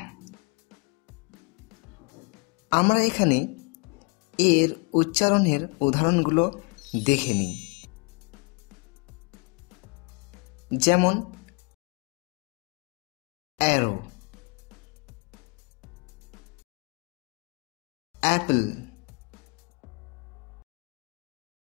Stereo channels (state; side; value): quieter; right; 32.0 dB